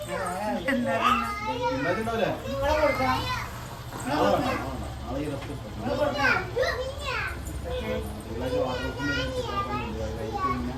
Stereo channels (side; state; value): both; identical; correlation 1.00